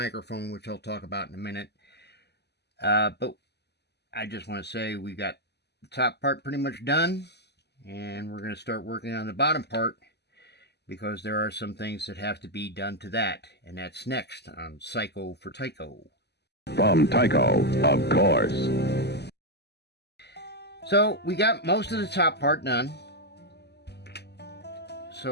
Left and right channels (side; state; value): right; late; 0.49 ms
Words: which I'll talk about in a minute. But I just want to say we got the top part pretty much done, and we're going to start working on the bottom part because there are some things that have to be done to that, and that's next on Cycle for Tyco. From Tyco, of course. So we got most of the top part done.